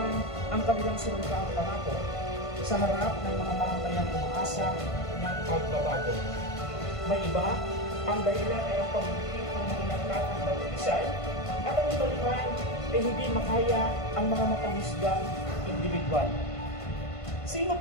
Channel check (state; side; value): late; right; 1.5 ms